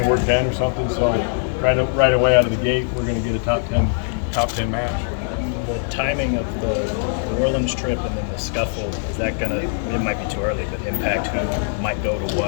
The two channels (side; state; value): right; silent; digital silence